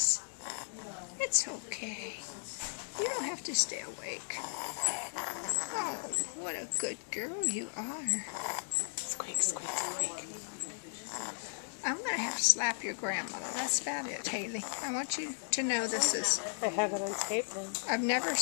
It's okay. You don't have to stay awake. Oh, what a good girl you are. Squeak, squeak, squeak. I'm going to have to slap your grandmother. That's about it, Haley. I want you to know this is... I have it on tape now. I've never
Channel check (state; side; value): silent; right; digital silence